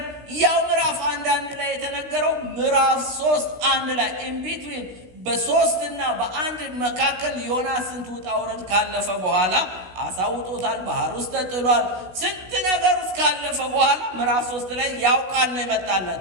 ያው ምዕራፍ 1 ላይ የተነገረው ምዕራፍ 3:1 ላይ ኢንቢትዊን በ3 እና በ1 መካከል ዮናስ ስንት ውጣ ውረድ ካለፈ በኋላ አሳውጦታል። ባህር ውስጥ ተጥሏል። ስንት ነገር ውስጥ ካለፈ በኋላ ምዕራፍ 3 ላይ ያው ቃል ነው የመጣለት።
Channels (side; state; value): left; late; 16 ms